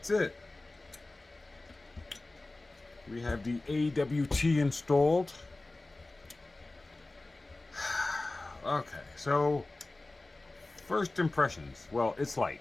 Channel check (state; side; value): quieter; right; 3.0 dB